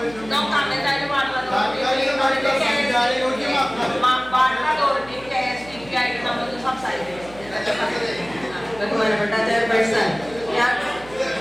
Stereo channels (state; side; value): noise; right; hum, 20 dB below the sound